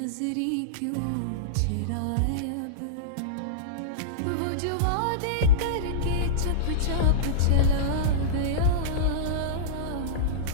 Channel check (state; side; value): different; both; correlation -0.04